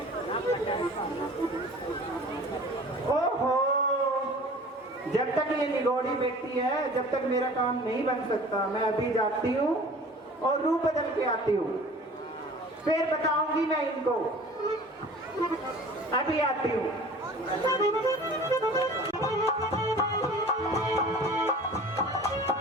ओहो, जब तक ये निगोड़ी बैठी है, जब तक मेरा काम नहीं बन सकता। मैं अभी जाती हूँ और रूप बदल के आती हूँ, फिर बताऊंगी मैं इनको। अभी आती हूँ।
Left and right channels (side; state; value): both; normal; correlation 0.44